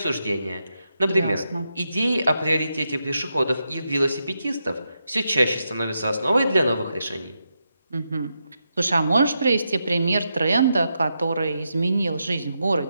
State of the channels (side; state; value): both; inverted; correlation -0.85